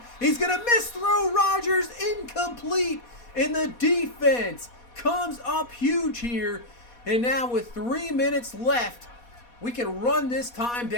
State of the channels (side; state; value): right; late; 4.2 ms